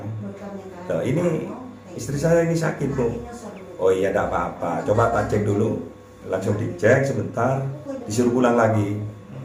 Loh, ini istri saya ini sakit Bu. Oh iya, tidak apa-apa, coba tak cek dulu. Langsung dicek sebentar, disuruh pulang lagi.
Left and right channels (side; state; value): both; identical; correlation 1.00